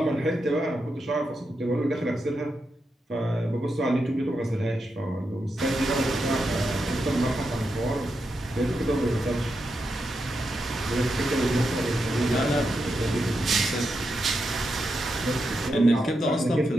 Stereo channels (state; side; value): normal; both; correlation 0.86